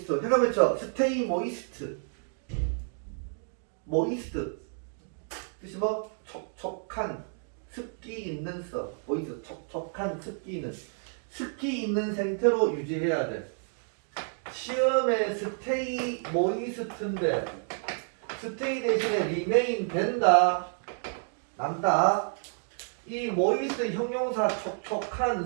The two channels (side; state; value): left; silent; 58 dB below the other